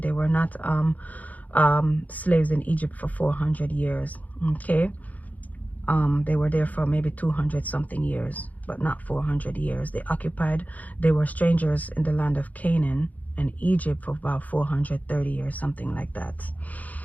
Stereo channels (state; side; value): late; right; 0.077 ms